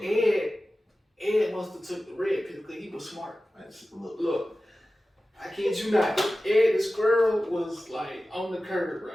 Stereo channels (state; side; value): normal; both; correlation 0.95